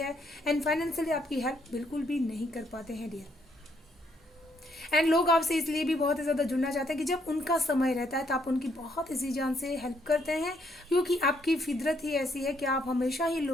एंड फाइनेंशियली आपकी हेल्प बिल्कुल भी नहीं कर पाते हैं डियर। एंड लोग आपसे इसलिए भी बहुत ही ज़्यादा जुड़ना चाहते हैं कि जब उनका समय रहता है तो आप उनकी बहुत इसी जान से हेल्प करते हैं, क्योंकि आपकी फितरत ही ऐसी है कि आप हमेशा ही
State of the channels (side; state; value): both; normal; correlation 0.72